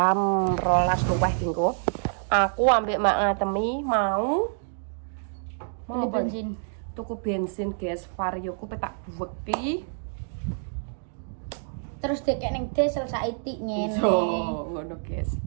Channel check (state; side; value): silent; left; digital silence